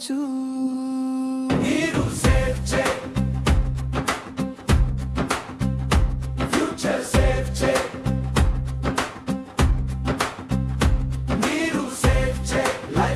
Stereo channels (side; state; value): both; identical; correlation 1.00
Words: నీరు సేవ్ చేయి, ఫ్యూచర్ సేవ్ చేయి. నీరు సేవ్ చేయి,